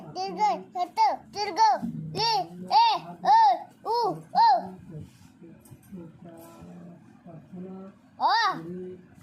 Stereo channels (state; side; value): identical; both; correlation 1.00